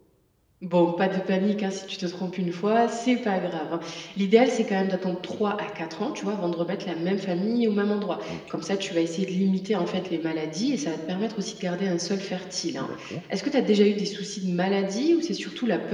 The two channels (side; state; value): both; identical; correlation 1.00